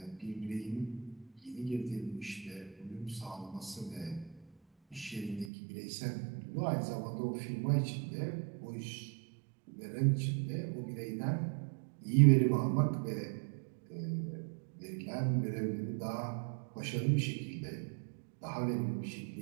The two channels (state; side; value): drops out; left; at 5.5 s